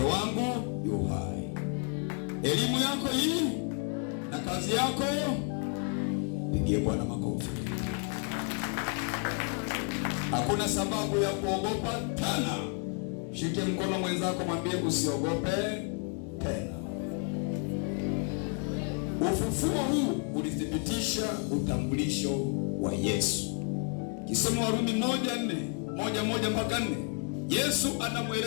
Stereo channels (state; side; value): quieter; right; 37.0 dB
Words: wangu yu hai, elimu yako hii na kazi yako. Pigie Bwana makofi. Hakuna sababu ya kuogopa tena. Shike mkono mwenzako, mwambie usiogope tena. Ufufuo huu ulithibitisha utambulisho wa Yesu. Kisema Warumi 1:4 Yesu